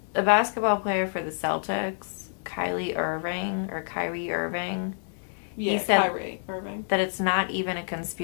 a basketball player for the Celtics, Kyrie Irving, Yeah, he said Kyrie Irving. that it's not even a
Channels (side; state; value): right; silent; digital silence